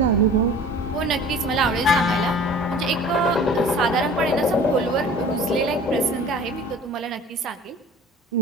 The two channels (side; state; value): both; normal; correlation 0.44